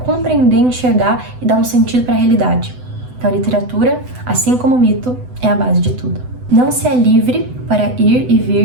enxergar e dar um sentido para a realidade. Então a literatura, assim como o mito, é a base de tudo. Não se é livre para ir e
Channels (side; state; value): left; late; 8.0 ms